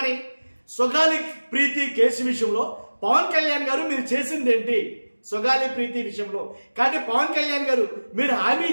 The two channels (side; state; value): both; inverted; correlation -1.00